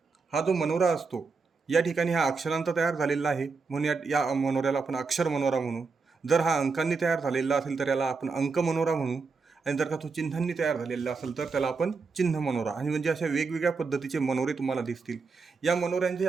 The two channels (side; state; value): left; quieter; 4.6 dB